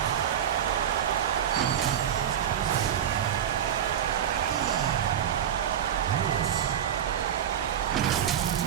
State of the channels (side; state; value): left; quieter; 9.6 dB